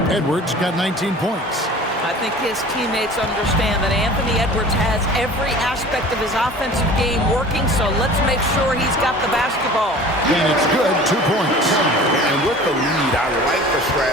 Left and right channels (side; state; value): both; normal; correlation 0.42